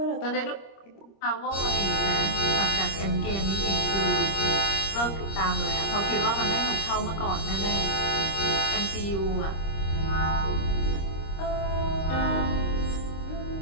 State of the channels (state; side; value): late; right; 25 ms